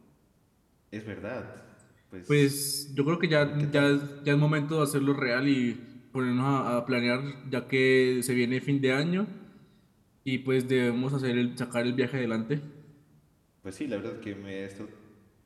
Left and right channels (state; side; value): identical; both; correlation 1.00